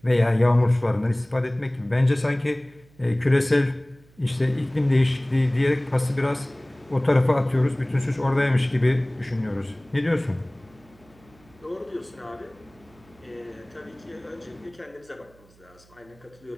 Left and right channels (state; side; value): noise; right; hum, 29 dB below the sound